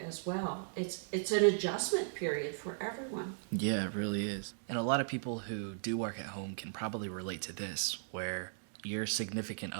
as well. It's an adjustment period for everyone. Yeah, it really is. And a lot of people who do work at home can probably relate to this, where your significant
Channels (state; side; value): silent; left; digital silence